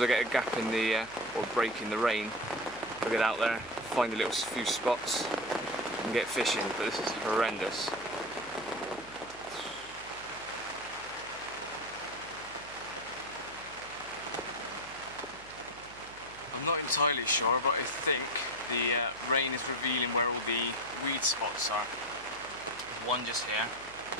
I get a gap in the, or break in the rain, I'll get out there, find a little few spots and get fishing, but this is horrendous. I'm not entirely sure, but I think the rain is revealing where all the weed spots are. One just here,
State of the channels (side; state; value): right; noise; hum, 21 dB below the sound